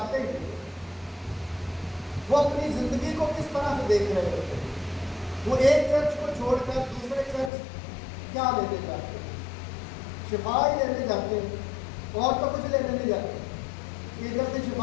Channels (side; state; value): right; drops out; at 7.5 s